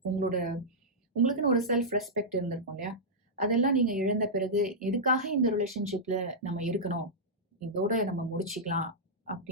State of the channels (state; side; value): normal; both; correlation -0.10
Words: உங்களுக்குன்னு ஒரு செல்ஃப் ரெஸ்பெக்ட் இருந்திருக்கும் இல்லையா? அதெல்லாம் நீங்க இழந்த பிறகு எதுக்காக இந்த ரிலேஷன்ஷிப்ல நம்ம இருக்கணும், இதோட நம்ம முடிச்சுக்கலாம்